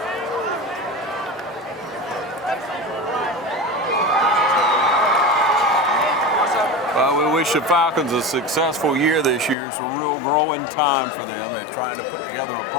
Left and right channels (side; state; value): right; drops out; at 9.6 s